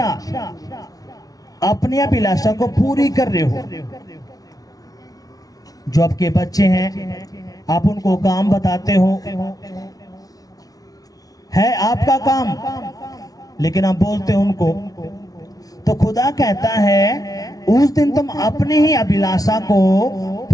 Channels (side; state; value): right; late; 0.18 ms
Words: अपनी अभिलाषा को पूरी कर रहे हो। जो आपके बच्चे हैं, आप उनको काम बताते हो, है आपका काम, लेकिन आप बोलते हो उनको। तो खुदा कहता है उस दिन तुम अपनी ही अभिलाषा को